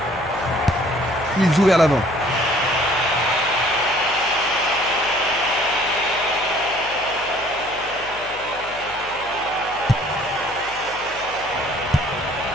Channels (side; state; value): left; noise; hum, 20 dB below the sound